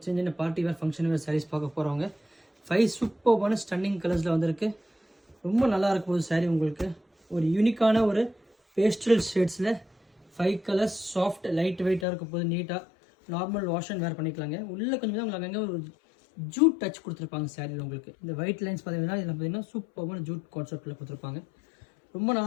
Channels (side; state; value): right; drops out; at 12.1 s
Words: சின்ன party wear function wear saris பார்க்க போகிறவங்க. 5 சூப்பர்பான ஸ்டன்னிங் கலர்ஸில் வந்திருக்கு. ரொம்ப நல்லா இருக்கும் ஒரு சாரீ. உங்களுக்கு ஒரு யூனிக்கான ஒரு பேஸ்டல் ஷேட்ஸில் 5 கலர்ஸ் சாஃப்ட் லைட் வெயிட்டாக இருக்கும் போது நீட்டாக நார்மல் வாஷ் அண்ட் வேர் பண்ணிக்கலாங்க. உள்ளே கொஞ்சம் தான் உங்களுக்கு அங்கே ஒரு ஜூட் டச் கொடுத்துருப்பாங்க சாரியில். உங்களுக்கு இந்த ஒயிட் லைன்ஸ் பார்த்தீங்கன்னா இதில் பார்த்தீங்கன்னா சூப்பரான ஜூட் கான்செப்டில் கொடுத்துருப்பாங்க. ரொம்ப